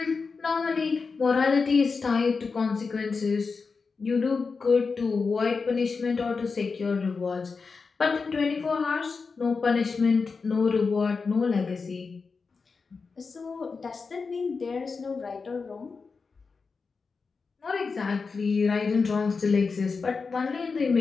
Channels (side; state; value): right; quieter; 4.7 dB